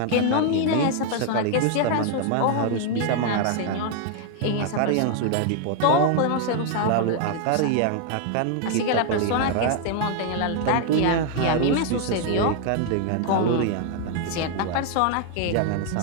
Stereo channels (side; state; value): both; different; correlation 0.00